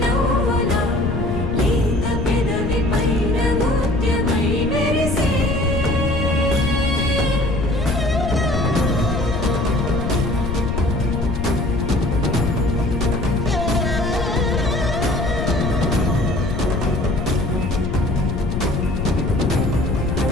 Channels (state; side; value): noise; left; rumble, 2 dB below the sound